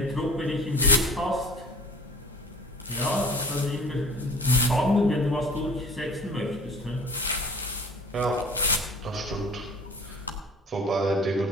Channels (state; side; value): normal; both; correlation 0.45